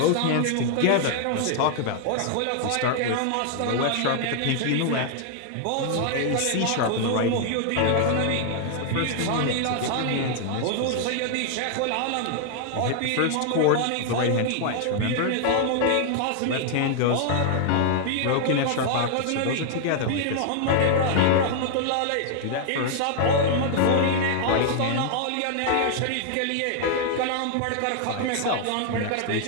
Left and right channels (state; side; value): different; both; correlation 0.00